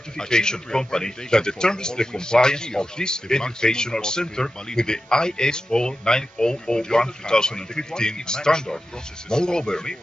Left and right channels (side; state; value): both; normal; correlation 0.92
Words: company that determines the compliance of this educational center with the ISO 9001-2015 standard. Moreover,